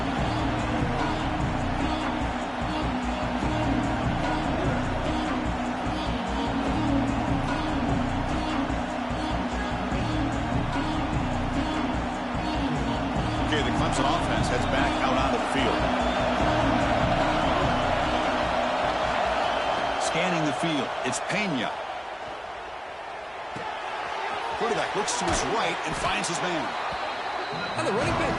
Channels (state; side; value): identical; both; correlation 1.00